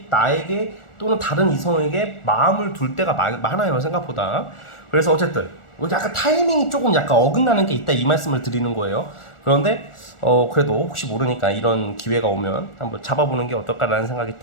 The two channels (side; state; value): right; late; 1.4 ms